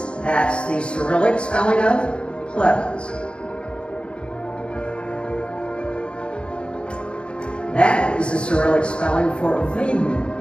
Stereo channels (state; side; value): late; right; 0.055 ms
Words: That's the Cyrillic spelling of Plevens. That is the Cyrillic spelling for Viden,